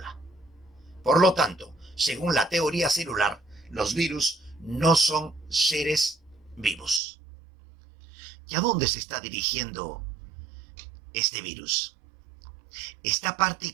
Por lo tanto, según la teoría celular, los virus no son seres vivos. ¿Y a dónde se está dirigiendo este virus? Esta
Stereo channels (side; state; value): left; drops out; at 7.0 s